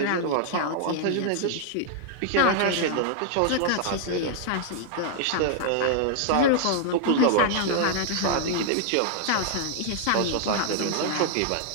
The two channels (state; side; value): different; both; correlation 0.00